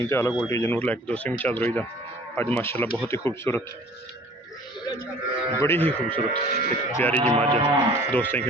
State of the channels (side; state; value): both; normal; correlation 0.49